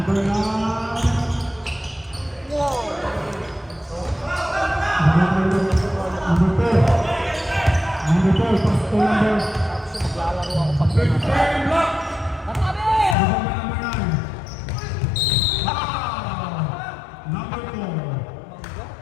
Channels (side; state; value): right; drops out; at 13.2 s